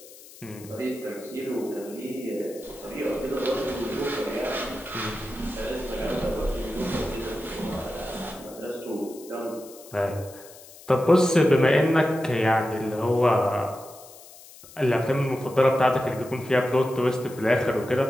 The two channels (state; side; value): noise; left; hiss, 20 dB below the sound